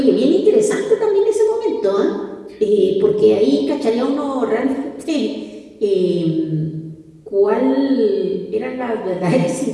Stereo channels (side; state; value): both; identical; correlation 1.00